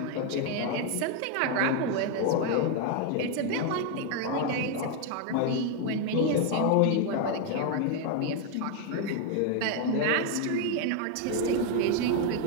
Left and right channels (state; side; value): different; both; correlation 0.01